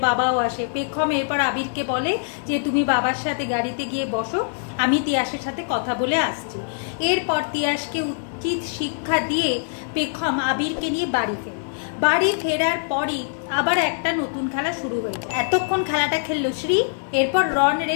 বাবাও আসে। পেখম এরপর আবিরকে বলে যে তুমি বাবার সাথে গাড়িতে গিয়ে বসো, আমি তিয়াসের সাথে কথা বলে আসছি। এরপর তিয়াসকে উচিত শিক্ষা দিয়ে পেখম আবিরকে নিয়ে বাড়ি ফেরে। বাড়ি ফেরার পরই আবার একটা নতুন খেলা শুরু হয়েছে। এতক্ষণ খেলাটা খেললো শ্রী, এরপর রন রে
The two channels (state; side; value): silent; right; digital silence